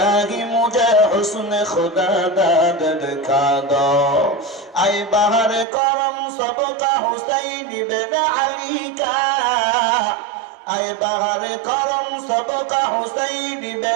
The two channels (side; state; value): left; drops out; at 5.7 s